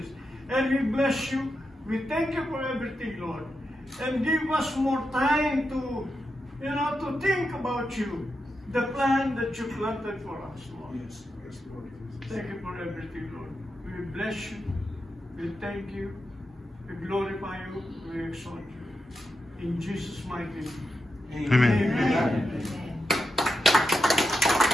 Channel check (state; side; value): normal; both; correlation 0.87